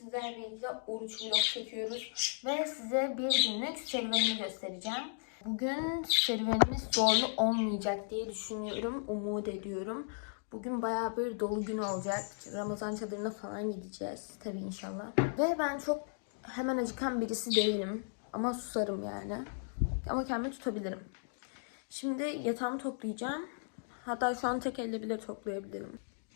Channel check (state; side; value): silent; right; digital silence